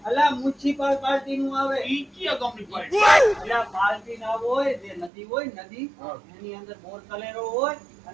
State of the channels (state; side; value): drops out; left; at 5.1 s